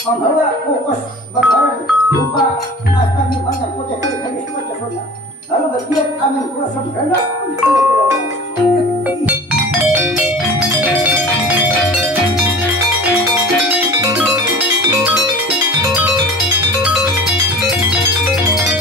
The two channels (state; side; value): normal; both; correlation 0.40